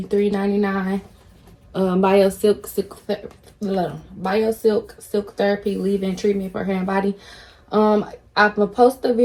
BioSilk Silk Therapy leave-in treatment for hair and body. I'm gonna post a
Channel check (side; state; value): both; identical; correlation 1.00